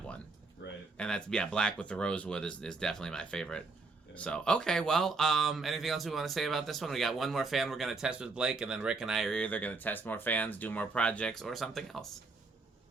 one. Right. And that's black with the rosewood is definitely my favorite. Yeah. So okay, well, anything else we want to say about this one? We got one more fan we're going to test with Blake, and then Rick and I are either going to test more fans, do more projects, or something else.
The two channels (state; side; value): quieter; left; 4.0 dB